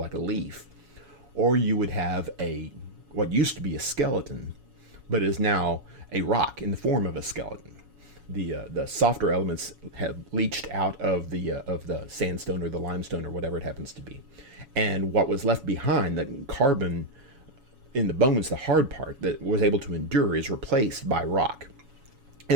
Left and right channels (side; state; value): left; late; 7.1 ms